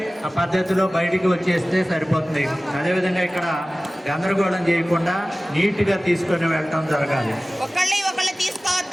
పద్ధతిలో బయటికి వచ్చేస్తే సరిపోతుంది. అదేవిధంగా ఇక్కడ గందరగోళం చేయకుండా నీట్గా తీసుకొని వెళ్ళటం జరగాలి. ఒకళ్ళు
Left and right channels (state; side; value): normal; both; correlation 0.97